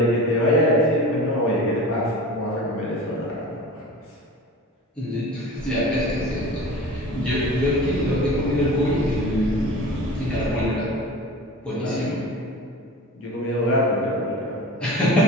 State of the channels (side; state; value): both; normal; correlation 0.36